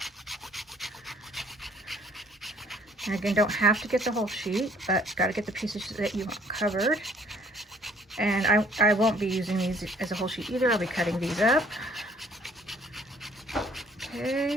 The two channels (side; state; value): both; normal; correlation 0.59